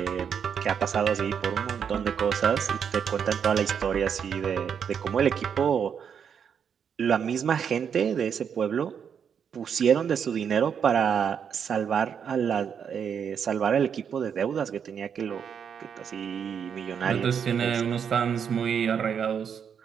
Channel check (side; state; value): left; quieter; 7.5 dB